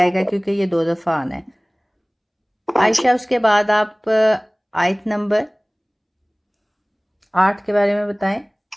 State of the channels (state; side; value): identical; both; correlation 1.00